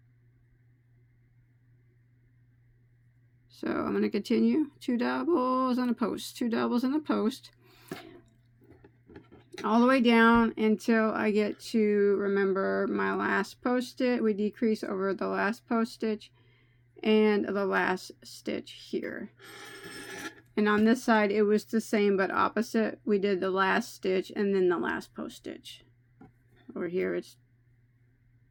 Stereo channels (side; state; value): both; identical; correlation 1.00